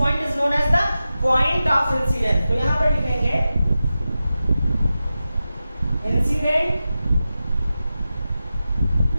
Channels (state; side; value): inverted; both; correlation -0.93